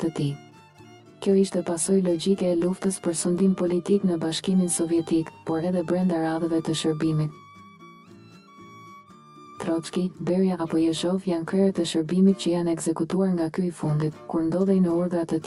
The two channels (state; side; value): identical; both; correlation 1.00